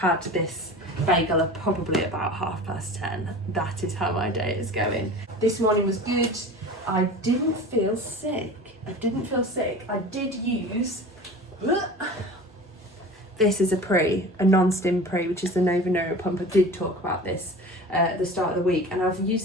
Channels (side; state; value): both; normal; correlation 0.37